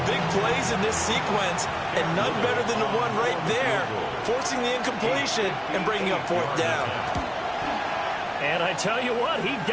big plays in this sequence, and none better than the one right there, forcing the incompletion and bringing up 4th down. And I tell you what, he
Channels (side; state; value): both; identical; correlation 1.00